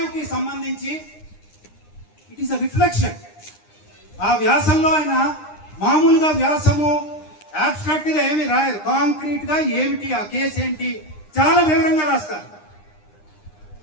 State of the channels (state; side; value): late; right; 9.8 ms